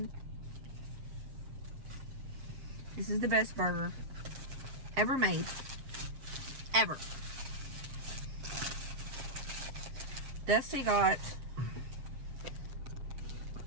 This is the best burger ever made. Ever. Dusty got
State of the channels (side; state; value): left; late; 7.5 ms